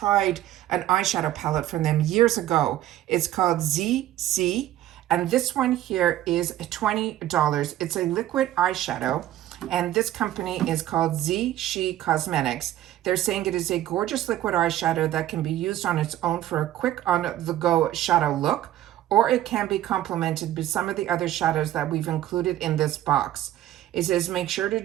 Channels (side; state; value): left; quieter; 13.4 dB